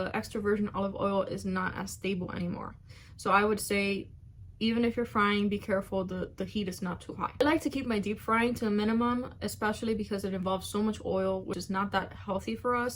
extra virgin olive oil is not as stable anymore. So I would say, even if you're frying, be careful the heat is not too high. I like to keep my deep frying to a minimum, especially because it involves so much oil, which is not that healthy for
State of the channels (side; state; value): both; identical; correlation 1.00